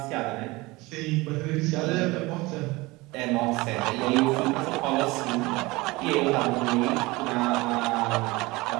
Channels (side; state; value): left; quieter; 22.2 dB